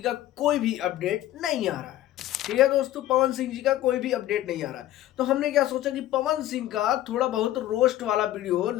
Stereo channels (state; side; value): quieter; right; 13.9 dB